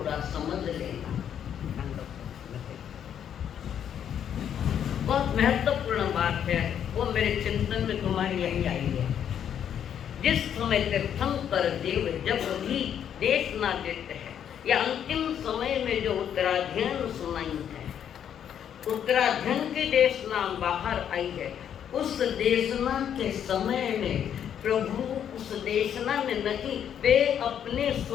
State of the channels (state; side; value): quieter; right; 9.1 dB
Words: समझ लेना, बहुत महत्वपूर्ण बात है, वो मेरे चिंतन में तुम्हारी यही आई है। जिस समय तीर्थंकर देव जब भी देशना देते हैं या अंतिम समय में जो उत्तराध्ययन सुनाई है, उत्तराध्ययन की देशना बाहर आई है, उस देशना के समय में प्रभु उस देशना में नहीं, वे अपने